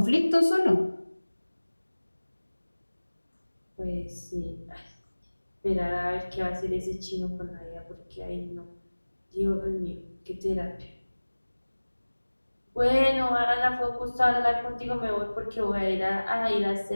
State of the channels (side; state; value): both; inverted; correlation -1.00